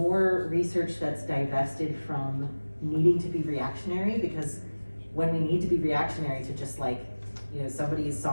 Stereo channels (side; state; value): both; inverted; correlation -1.00